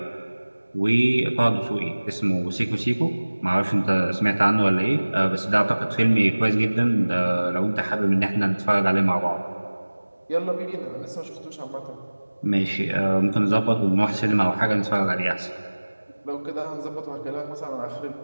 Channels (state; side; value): inverted; both; correlation -1.00